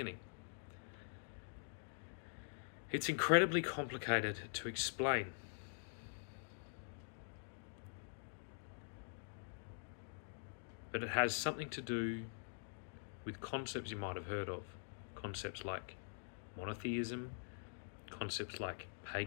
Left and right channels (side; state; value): right; silent; digital silence